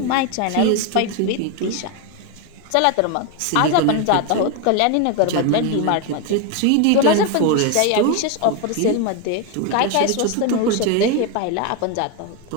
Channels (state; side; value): different; both; correlation 0.02